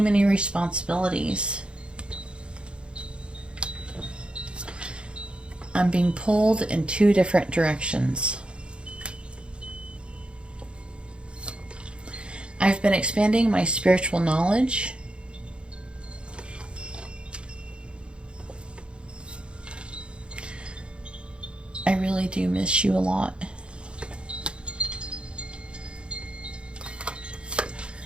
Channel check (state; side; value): late; left; 0.056 ms